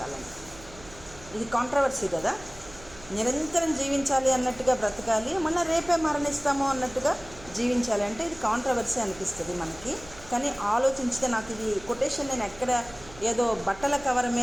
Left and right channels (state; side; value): noise; right; hum, 19 dB below the sound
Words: ఇది కాంట్రవర్సీ కదా. నిరంతరం జీవించాలి అన్నట్టుగా బ్రతకాలి, మళ్ళీ రేపే మరణిస్తాము అన్నట్టుగా జీవించాలి అంటే ఇది కాంట్రవర్సీ అనిపిస్తుంది మనకి. కానీ ఆలోచించితే, నాకు ఇది కొటేషన్ నేను ఎక్కడ ఏదో బట్టల కవర్